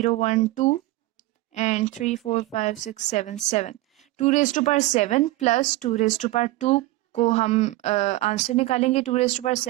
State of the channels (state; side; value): quieter; left; 18.4 dB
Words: 1 2 and 3 4 5 6 7 7। 2 raise to power 7 plus 2 raise to power 2 को हम आंसर निकालेंगे। 2 रेज़ टू पावर